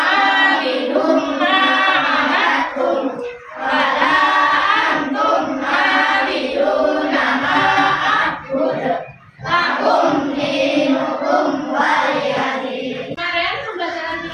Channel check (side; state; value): both; identical; correlation 1.00